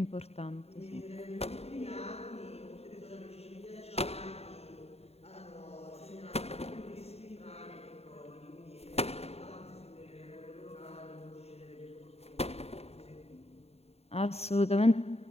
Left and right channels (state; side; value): late; right; 0.30 ms